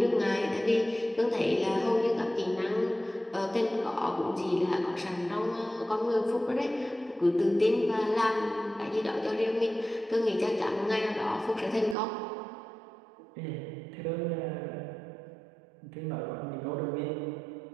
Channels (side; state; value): left; drops out; at 12.0 s